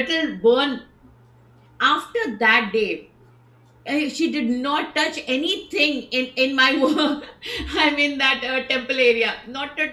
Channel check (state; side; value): identical; both; correlation 1.00